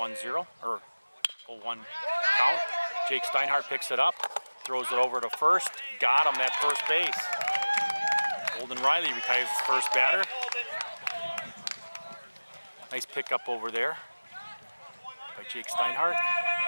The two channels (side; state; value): both; inverted; correlation -1.00